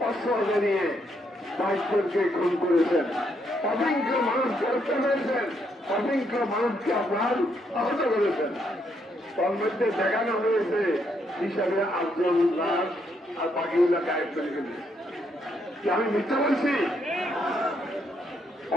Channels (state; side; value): normal; both; correlation 0.75